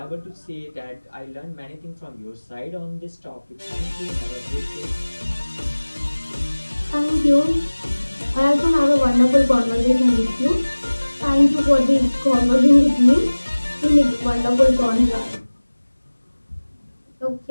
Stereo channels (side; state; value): both; inverted; correlation -1.00